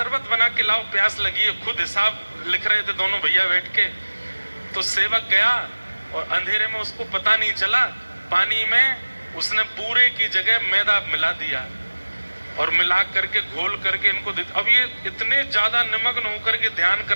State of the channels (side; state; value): both; inverted; correlation -1.00